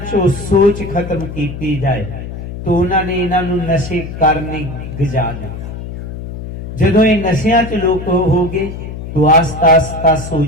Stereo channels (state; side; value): noise; left; hum, 9 dB below the sound